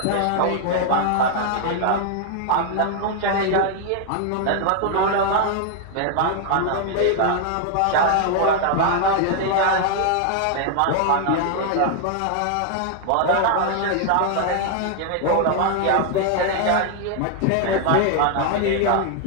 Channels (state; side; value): different; both; correlation 0.00